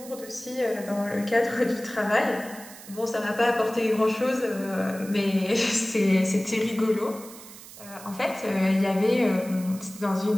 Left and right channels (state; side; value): noise; right; hiss, 17 dB below the sound